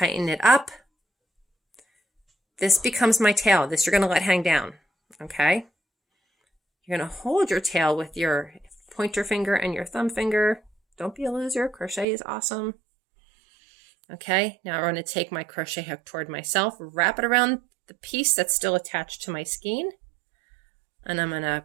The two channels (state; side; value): drops out; left; at 12.1 s